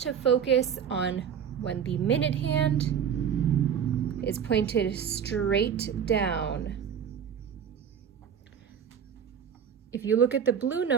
focus on when the minute hand is pointed straight down. If you look at the blue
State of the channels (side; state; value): left; quieter; 8.0 dB